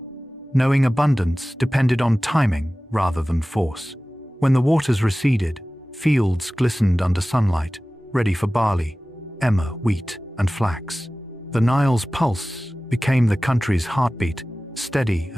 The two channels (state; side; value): normal; both; correlation 0.97